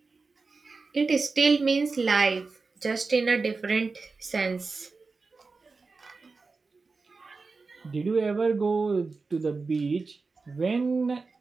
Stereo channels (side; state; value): left; quieter; 4.2 dB